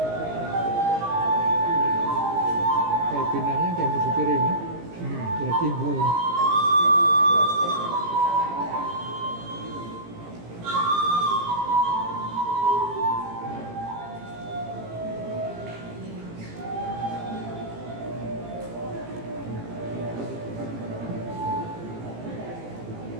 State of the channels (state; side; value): late; left; 17 ms